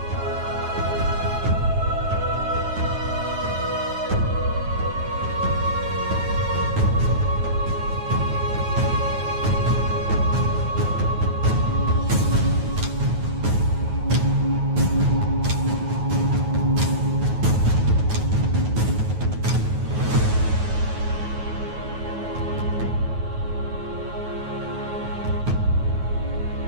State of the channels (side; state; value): left; late; 9.3 ms